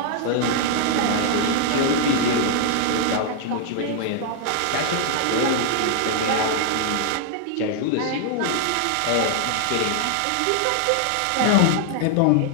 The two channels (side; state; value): both; different; correlation -0.01